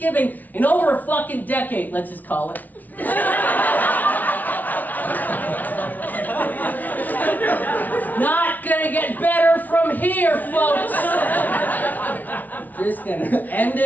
in over a fucking decade, let's just call it. Not gonna get better from here, folks. Just gonna end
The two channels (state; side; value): late; right; 0.079 ms